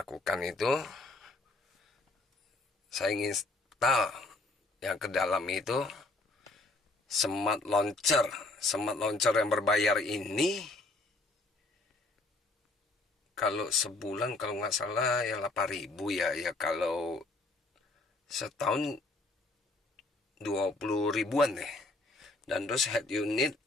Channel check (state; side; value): quieter; right; 3.1 dB